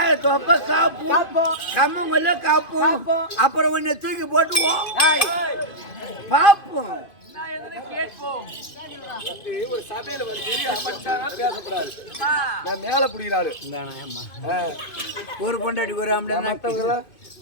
தொப்ப காப்போம் கம்மங்கொல்ல காப்போம் அப்புறம் உன்னை தூக்கி போட்டுவோம் பாப்போம் ஒரு சபையில வந்து அமைச்சாரா பேசக்கூடாது. நான் மேல புடிக்கிறாரு ஒரு பொண்டாடி ஒரு மத்தவங்க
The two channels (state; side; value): late; right; 2.5 ms